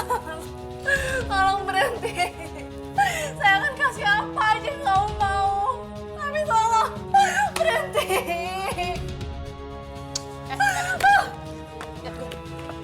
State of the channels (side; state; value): both; identical; correlation 1.00